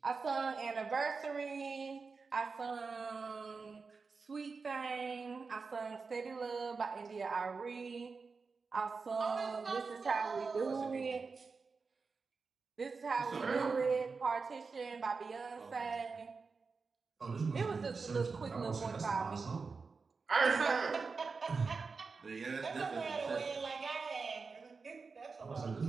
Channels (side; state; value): left; quieter; 4.7 dB